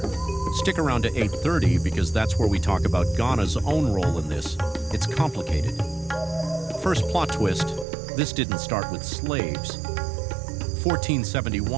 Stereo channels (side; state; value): left; drops out; at 7.9 s